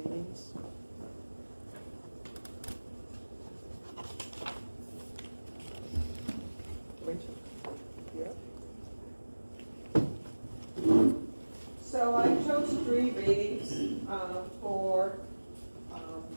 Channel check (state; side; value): inverted; both; correlation -1.00